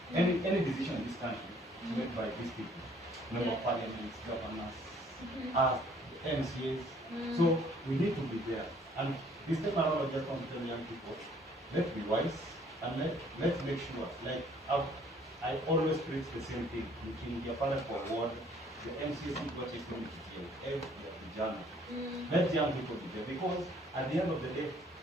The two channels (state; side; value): normal; both; correlation 0.60